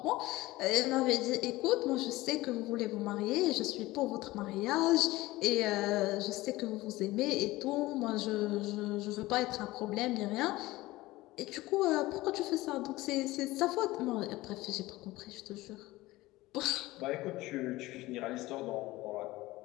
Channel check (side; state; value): right; quieter; 18.7 dB